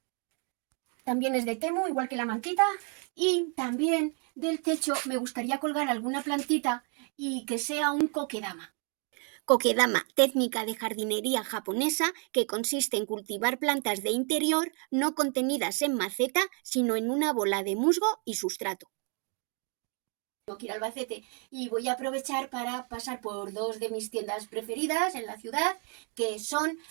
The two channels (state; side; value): quieter; left; 39.4 dB